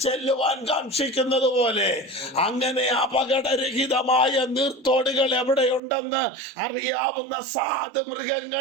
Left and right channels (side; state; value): left; drops out; at 5.8 s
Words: ചെല്ലുവാൻ കാക്ഷിക്കുന്നത് പോലെ അങ്ങനെ അപകടരഹിതമായ നീർത്തോടുകൾ എവിടെയുണ്ടെന്ന് അറിയാവുന്ന സാധു